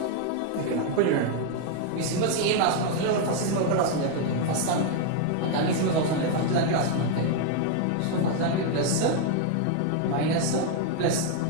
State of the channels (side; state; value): both; different; correlation 0.01